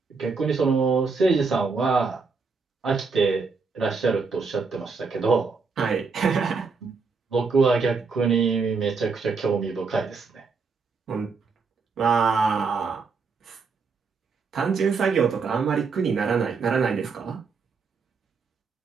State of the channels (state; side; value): quieter; left; 4.8 dB